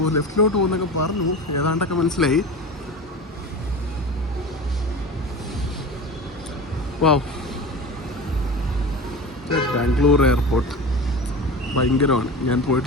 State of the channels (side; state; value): both; normal; correlation 0.31